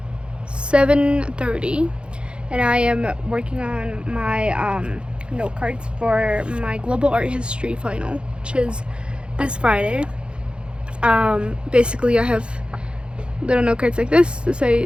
7:30 and I am working on my note cards for my global art history final, which is this Friday. Basically I have little note cards like this to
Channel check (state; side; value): late; left; 0.056 ms